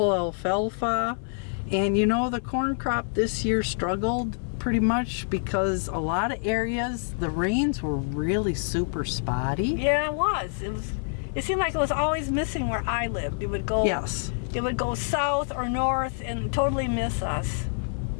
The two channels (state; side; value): silent; right; 56 dB below the other